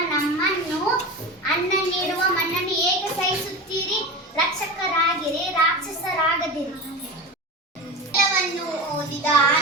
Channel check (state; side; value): normal; both; correlation 0.28